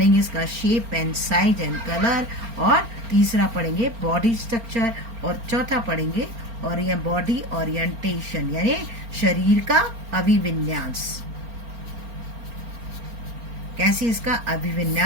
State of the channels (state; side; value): late; left; 4.3 ms